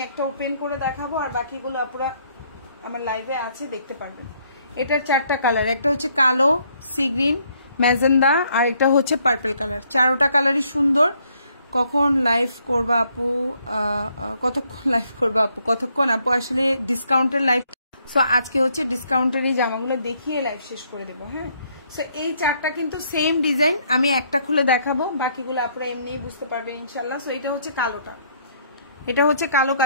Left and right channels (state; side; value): inverted; both; correlation -0.69